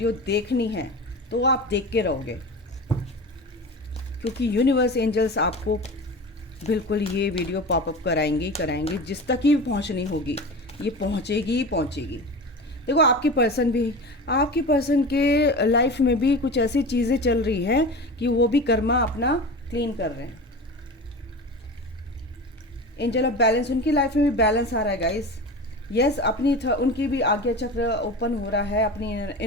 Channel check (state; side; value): normal; both; correlation 0.31